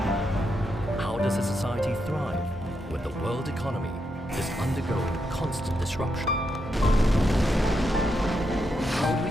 How does a society thrive when the world economy is undergoing constant disruption? How do we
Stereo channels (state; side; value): normal; both; correlation 0.83